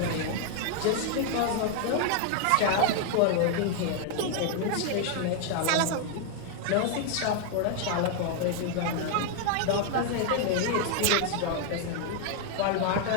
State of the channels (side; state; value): both; different; correlation 0.00